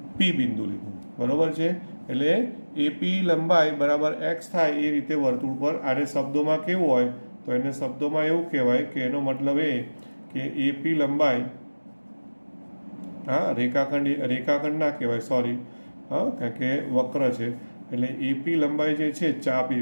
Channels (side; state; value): both; inverted; correlation -1.00